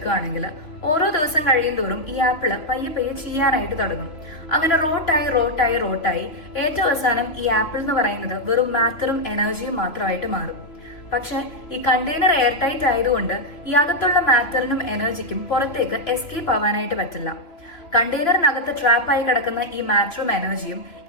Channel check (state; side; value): late; right; 3.0 ms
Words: ഓരോ ദിവസം കഴിയും തോറും ഈ ആപ്പിള് പയ്യെ പയ്യെ ചെയ്യാനായിട്ട് തുടങ്ങും. അങ്ങനെ റോട്ടായി ഏറ്റവും അവസാനം ഈ ആപ്പിൾ എന്ന് പറയുന്നത് വെറും മാറ്ററും എനർജിയും മാത്രമായിട്ട് മാറും. പക്ഷെ ഈ കണ്ടെയ്നർ എയർ ടൈറ്റ് ആയതുകൊണ്ട് ഈ അകത്തുള്ള മാറ്ററിനും എനർജിക്കും പുറത്തേക്ക് എസ്കേപ്പ് ആവാനായിട്ട് പറ്റില്ല. കണ്ടെയ്നറിനകത്ത് ട്രാപ്പായി കിടക്കുന്ന ഈ മാറ്ററും എനർജിയും